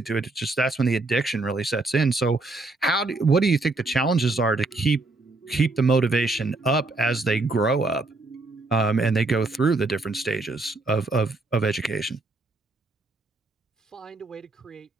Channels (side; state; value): left; quieter; 3.2 dB